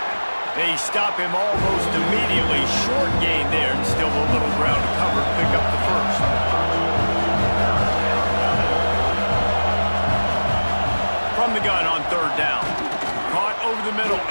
They stop him almost immediately. Short gain there, and still a little ground to cover. Pick up the first. From the gun on 3rd down. Caught over the middle,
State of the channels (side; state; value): both; inverted; correlation -1.00